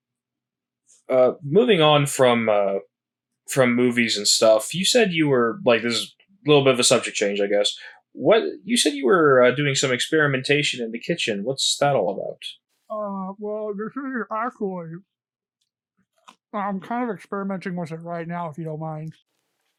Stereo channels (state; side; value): identical; both; correlation 1.00